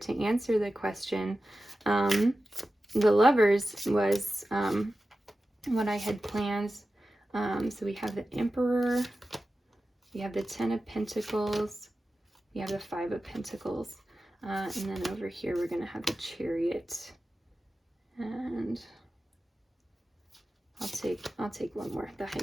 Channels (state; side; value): normal; both; correlation 0.93